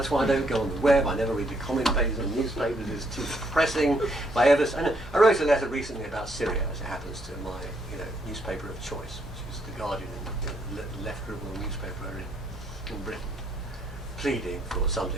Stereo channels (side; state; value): both; normal; correlation 0.71